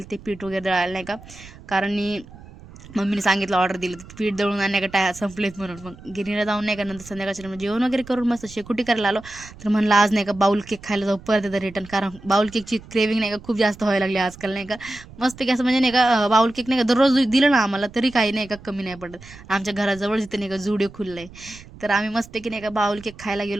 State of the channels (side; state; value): right; noise; rumble, 19 dB below the sound